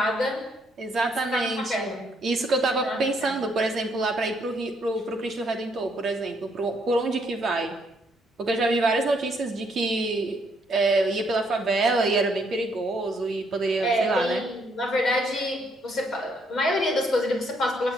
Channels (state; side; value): normal; both; correlation 0.71